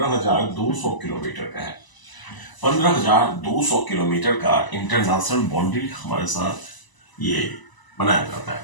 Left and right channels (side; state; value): right; late; 1.0 ms